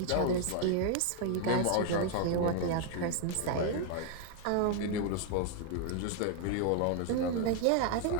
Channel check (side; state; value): both; different; correlation 0.00